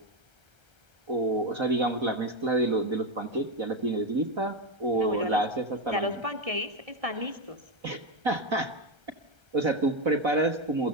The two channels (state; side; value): late; left; 1.3 ms